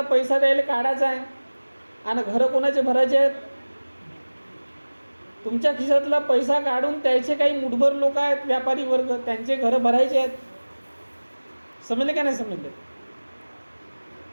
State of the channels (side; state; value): both; inverted; correlation -1.00